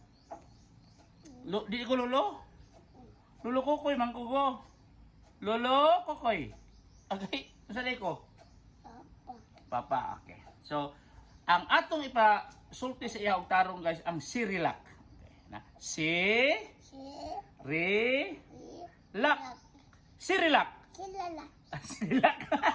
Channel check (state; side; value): identical; both; correlation 1.00